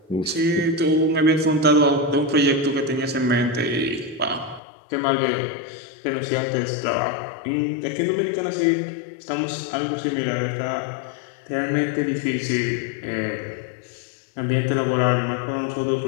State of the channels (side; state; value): right; drops out; at 4.6 s